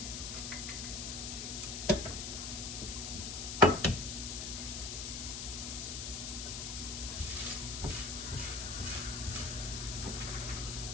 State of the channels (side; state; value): left; noise; hiss, 4 dB below the sound